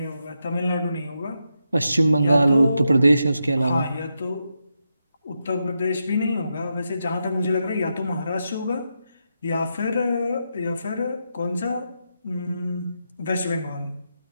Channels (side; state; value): both; inverted; correlation -0.85